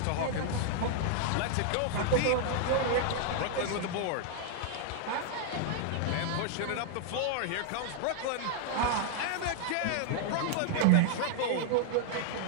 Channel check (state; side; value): different; both; correlation 0.00